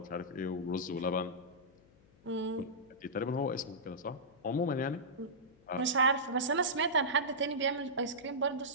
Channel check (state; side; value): noise; left; hum, 28 dB below the sound